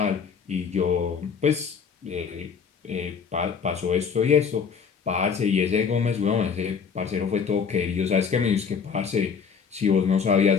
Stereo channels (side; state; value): right; quieter; 6.2 dB